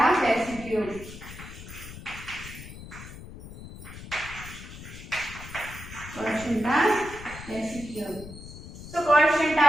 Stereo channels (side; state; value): left; noise; rumble, 13 dB below the sound